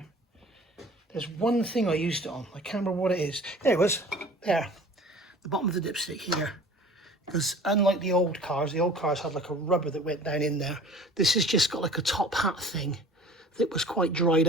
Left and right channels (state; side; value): normal; both; correlation 0.45